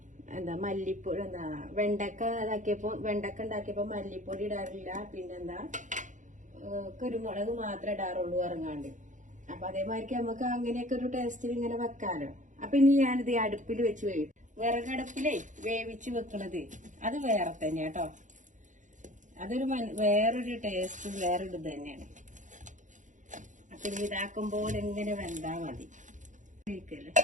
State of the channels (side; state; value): left; late; 0.36 ms